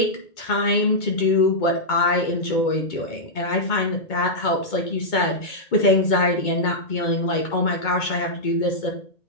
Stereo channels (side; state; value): right; late; 2.2 ms